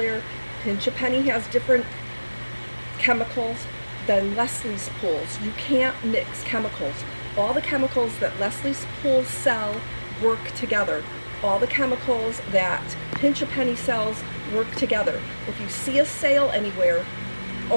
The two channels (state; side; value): inverted; both; correlation -1.00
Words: Pinch a Penny has different chemicals than Leslie's Pools. You can't mix chemicals. All the chemicals that Leslie's Pools sell work together. All the chemicals that Pinch a Penny sells work together. If you see a sale anywhere,